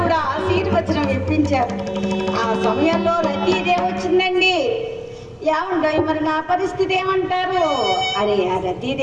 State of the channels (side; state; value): both; identical; correlation 1.00